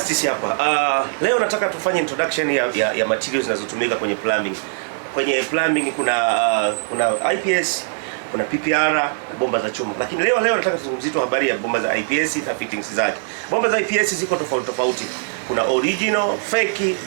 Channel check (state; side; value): silent; left; digital silence